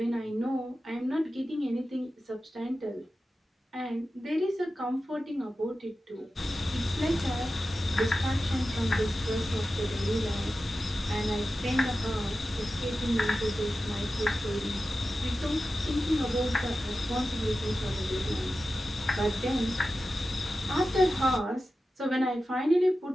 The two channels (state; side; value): normal; both; correlation 0.93